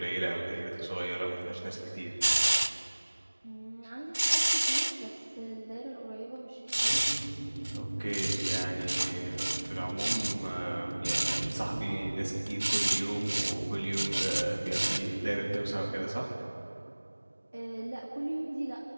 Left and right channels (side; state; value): both; inverted; correlation -1.00